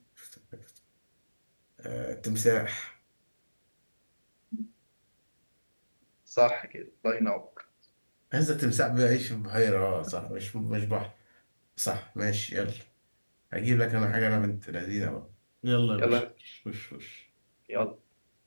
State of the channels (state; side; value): inverted; both; correlation -1.00